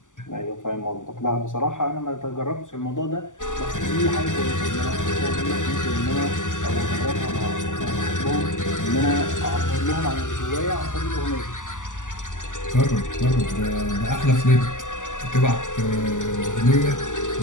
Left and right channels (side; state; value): right; late; 0.87 ms